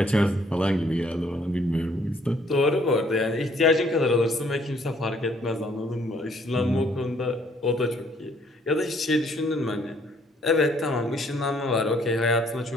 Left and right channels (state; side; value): normal; both; correlation 0.64